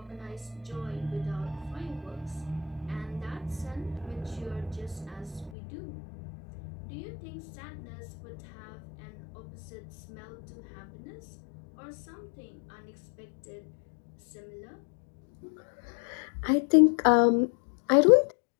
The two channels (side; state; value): right; drops out; at 5.5 s